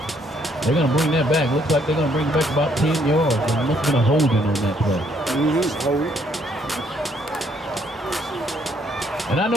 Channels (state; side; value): normal; both; correlation 0.68